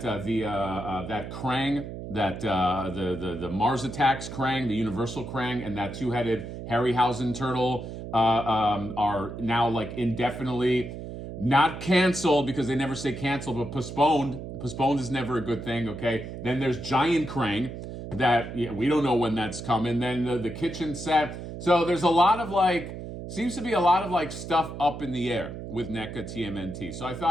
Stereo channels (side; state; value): right; noise; hum, 9 dB below the sound